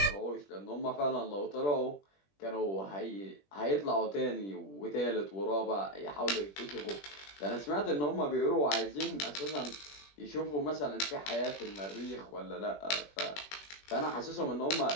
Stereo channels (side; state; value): right; late; 20 ms